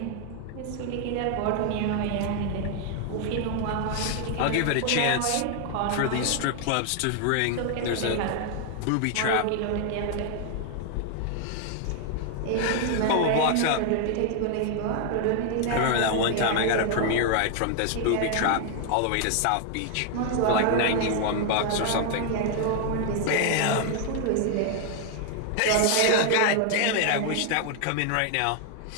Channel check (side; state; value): both; different; correlation 0.00